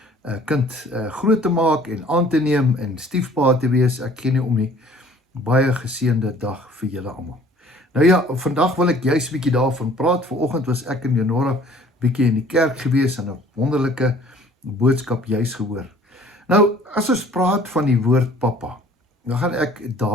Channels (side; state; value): both; normal; correlation 0.53